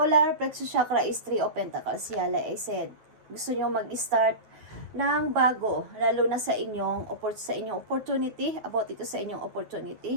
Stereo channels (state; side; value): late; left; 9.4 ms